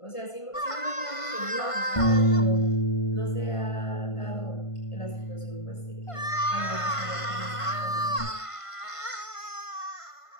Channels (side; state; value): right; late; 1.5 ms